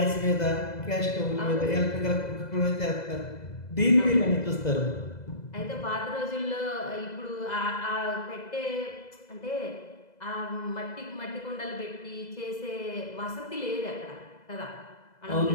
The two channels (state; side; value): late; right; 2.0 ms